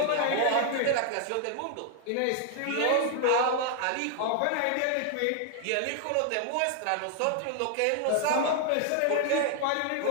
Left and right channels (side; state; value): both; different; correlation 0.00